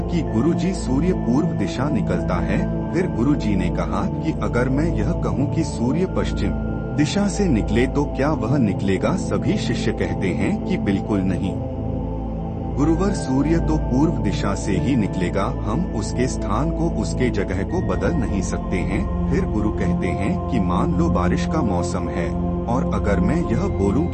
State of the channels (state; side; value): identical; both; correlation 1.00